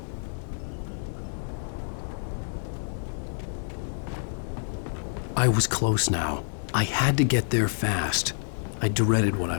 I was close now. I had to get there fast. I dreaded what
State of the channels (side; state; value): right; silent; digital silence